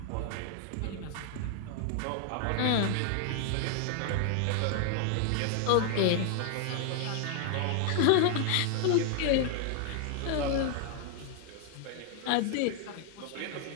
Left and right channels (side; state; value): both; different; correlation 0.00